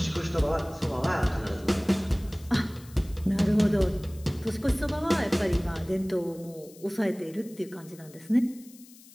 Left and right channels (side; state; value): left; noise; hiss, 22 dB below the sound